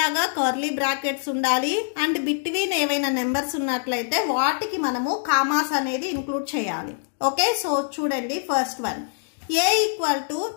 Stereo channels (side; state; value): right; silent; digital silence